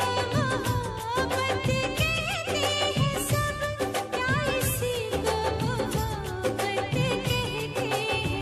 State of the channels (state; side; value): identical; both; correlation 1.00